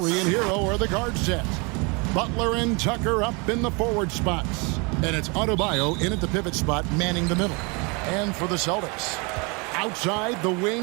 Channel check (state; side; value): quieter; left; 30.4 dB